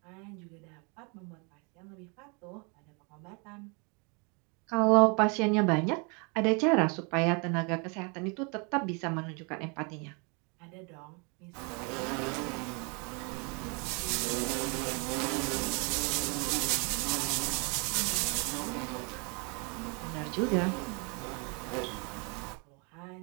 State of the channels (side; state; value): left; quieter; 33.1 dB